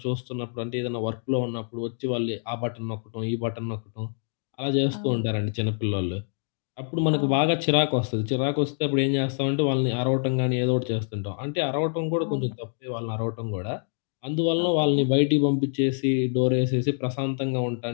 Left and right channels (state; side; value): silent; right; digital silence